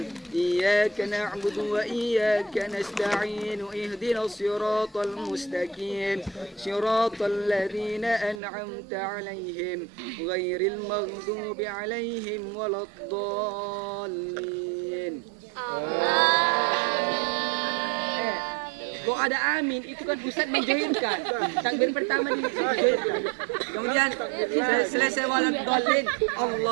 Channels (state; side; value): drops out; left; at 8.4 s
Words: إياك نعبد وإياك نستعين اهدنا الصراط المستقيم صراط الذين أنعمت عليهم غير المغضوب عليهم ولا الضالين. Kok ada amin, itu kan Ustaz menjoinkan. Takbir pertama dijoinkan. Kemudian selesai walad dhalin,